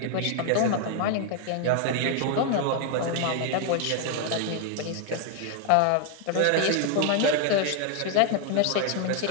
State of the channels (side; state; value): both; different; correlation 0.00